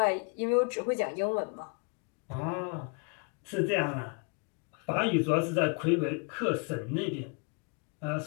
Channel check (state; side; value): quieter; right; 35.5 dB